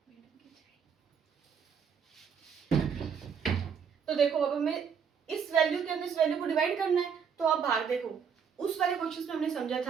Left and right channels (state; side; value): quieter; left; 6.9 dB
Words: तो देखो अब हमें इस वैल्यू के अंदर इस वैल्यू को डिवाइड करना है। तो आप भाग देखो, उस वाले क्वेश्चन में हमने समझा